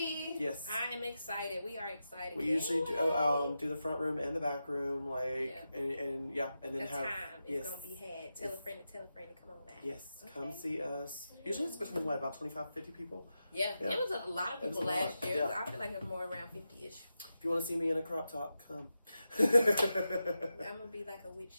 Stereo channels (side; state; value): both; inverted; correlation -0.90